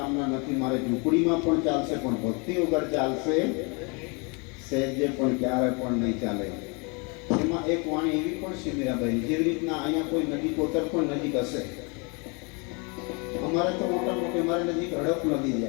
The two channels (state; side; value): quieter; right; 32.2 dB